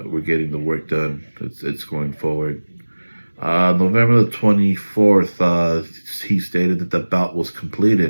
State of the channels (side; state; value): both; inverted; correlation -1.00